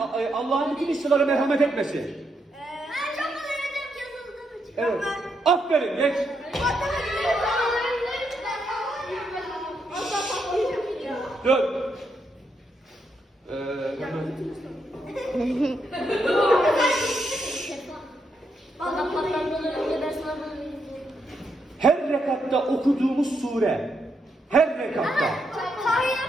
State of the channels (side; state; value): both; normal; correlation 0.80